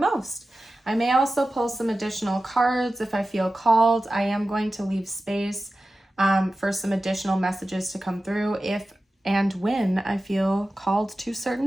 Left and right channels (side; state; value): both; normal; correlation 0.94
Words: I may also pull some additional cards if I feel called. I am going to leave space for some additional messages to come through if and when I feel called to